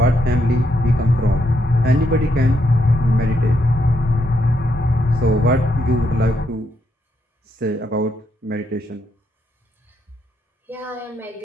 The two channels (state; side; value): normal; both; correlation 0.78